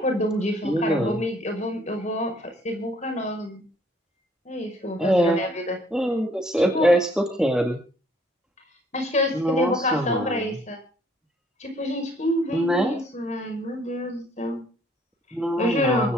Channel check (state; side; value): normal; both; correlation 0.62